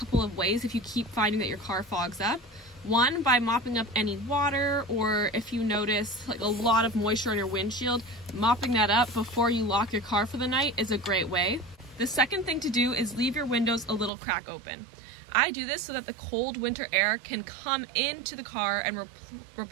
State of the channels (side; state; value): left; drops out; at 14.1 s